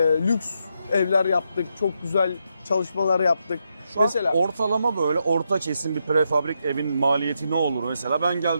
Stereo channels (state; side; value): inverted; both; correlation -0.82